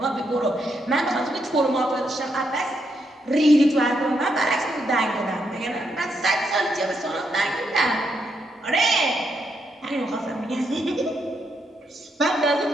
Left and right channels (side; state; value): both; normal; correlation 0.79